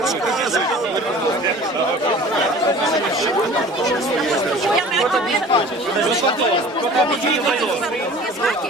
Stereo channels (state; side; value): normal; both; correlation 0.44